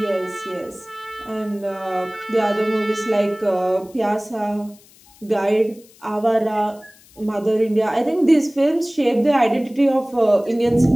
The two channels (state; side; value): noise; left; hiss, 27 dB below the sound